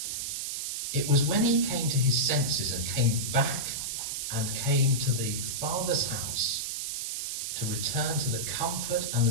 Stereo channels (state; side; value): noise; right; hiss, 3 dB below the sound